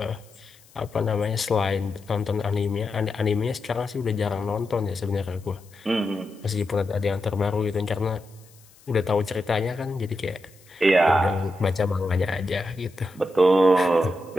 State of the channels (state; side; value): noise; left; hiss, 27 dB below the sound